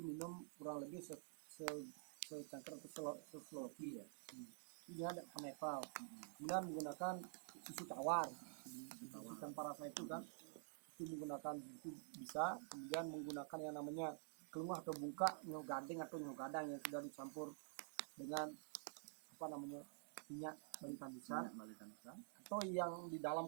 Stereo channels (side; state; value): left; silent; digital silence